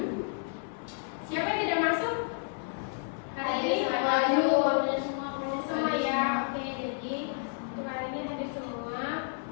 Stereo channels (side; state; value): right; silent; 57 dB below the other